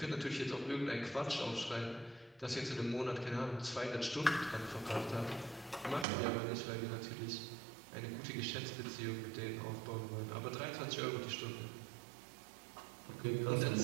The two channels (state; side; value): drops out; left; at 6.1 s